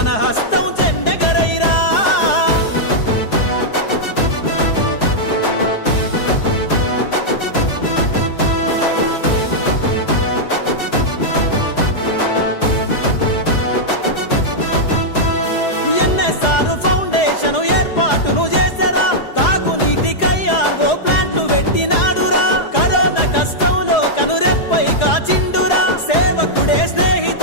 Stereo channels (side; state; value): right; late; 4.8 ms